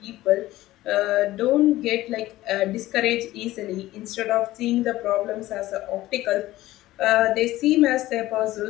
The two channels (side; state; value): right; quieter; 16.3 dB